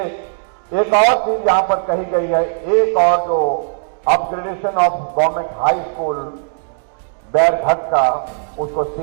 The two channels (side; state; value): left; silent; digital silence